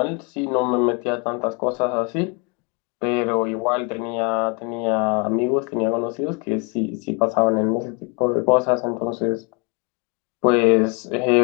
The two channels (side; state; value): right; quieter; 32.0 dB